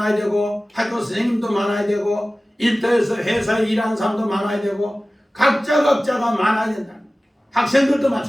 되고 학교 선생님도 많아야 되고 일터에서 회사에 일하는 사람도 많아야 되고 각자가 많아야 된다. 학생들도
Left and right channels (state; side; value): normal; both; correlation 0.97